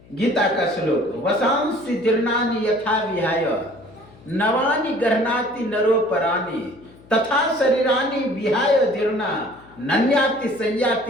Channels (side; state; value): left; noise; hum, 25 dB below the sound